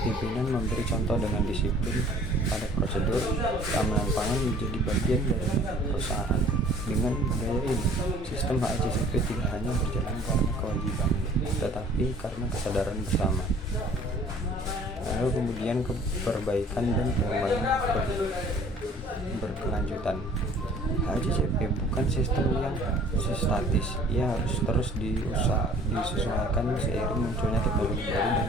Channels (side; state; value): both; normal; correlation 0.52